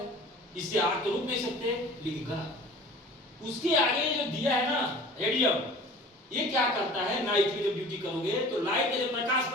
इससे आग तो रुक नहीं सकते, लेकिन गलत। उसके आगे जो दिया है ना रेडियम, ये क्या करता है? नाइट में जब ड्यूटी करोगे तो लाइट का जब प्रकाश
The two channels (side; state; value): both; normal; correlation 0.43